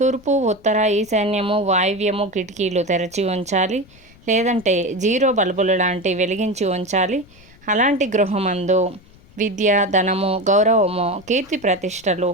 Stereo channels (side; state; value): left; noise; rumble, 26 dB below the sound